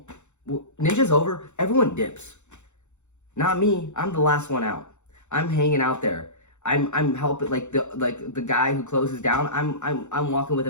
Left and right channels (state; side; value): late; right; 0.83 ms